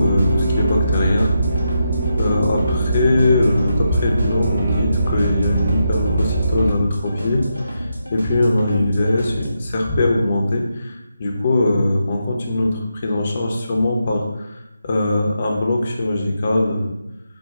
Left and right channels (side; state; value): both; inverted; correlation -0.84